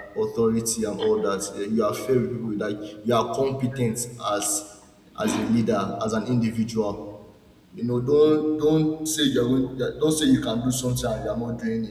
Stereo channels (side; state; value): both; identical; correlation 1.00